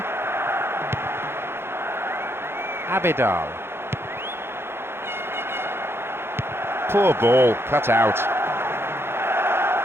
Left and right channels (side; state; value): left; late; 0.11 ms